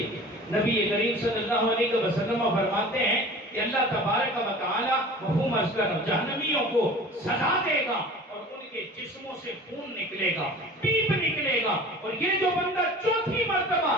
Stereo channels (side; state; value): both; normal; correlation 0.41